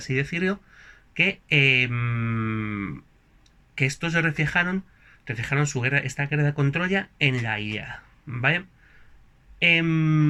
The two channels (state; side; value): identical; both; correlation 1.00